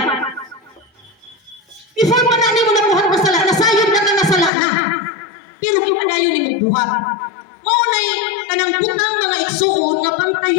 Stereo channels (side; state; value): right; drops out; at 4.5 s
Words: before pa na mo nabuhat na sala, nasayod na ka nasala na. Pero kung panayon ni mo buhat. Maunay, kanang butang mga igsoon, nga